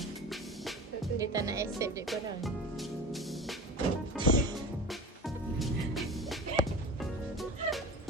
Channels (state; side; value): normal; both; correlation 0.33